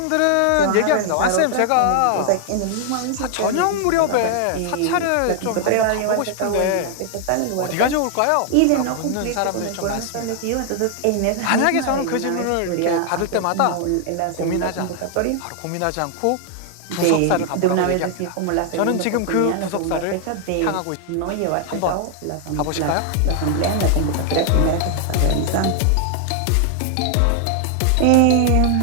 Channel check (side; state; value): both; different; correlation 0.00